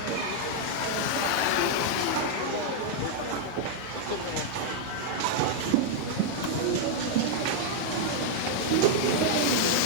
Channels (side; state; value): both; different; correlation -0.01